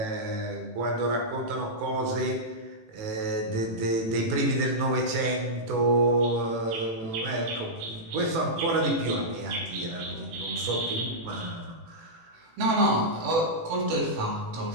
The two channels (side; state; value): left; late; 18 ms